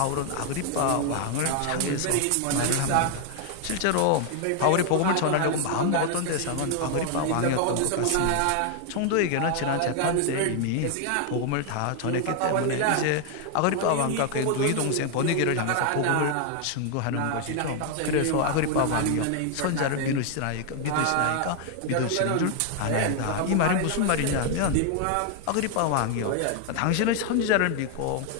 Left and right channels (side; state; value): both; different; correlation 0.00